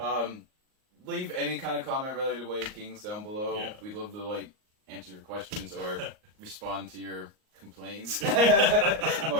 Leave any kind of comment related to Way of Kings down below. Yeah. We'd love to answer your questions or respond to your complaints. More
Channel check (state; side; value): late; left; 38 ms